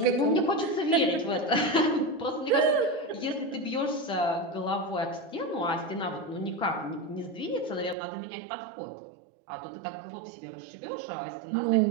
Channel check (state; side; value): drops out; left; at 8.0 s